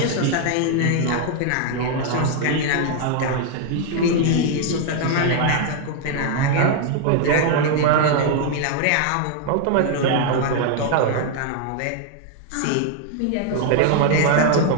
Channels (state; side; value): different; both; correlation 0.00